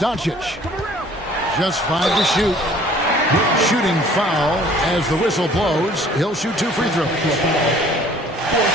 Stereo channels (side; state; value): both; normal; correlation 0.54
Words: Just 5 to shoot. Shooting foul as the whistle blows. He'll shoot 2 free throws. A